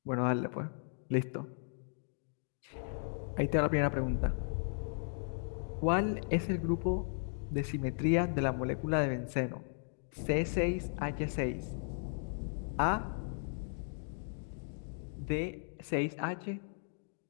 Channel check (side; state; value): right; silent; digital silence